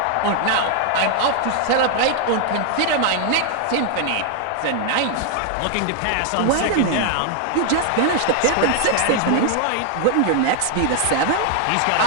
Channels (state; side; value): different; both; correlation 0.00